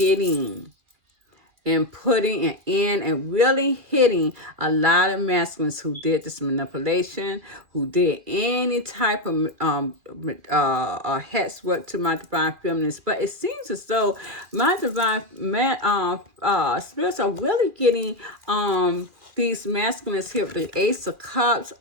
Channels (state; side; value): late; left; 2.4 ms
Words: and putting in and really hitting a lot of masculines who did this manipulation, who did any type of hex work to my divine feminines. But it seems as though my divine spirits are really getting these masculines here with the Ace of Cups